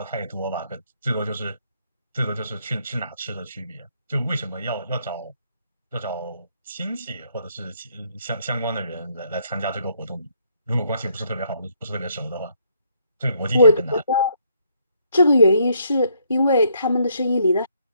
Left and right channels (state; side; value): inverted; both; correlation -0.70